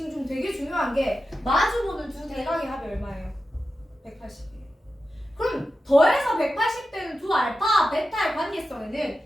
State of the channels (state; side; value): normal; both; correlation 0.91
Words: 중 되게 중요한 게 마주보는 두 대각의 합이 얼마예요? 180이에요. 그럼 더해서 180되는 두 알파, 베타의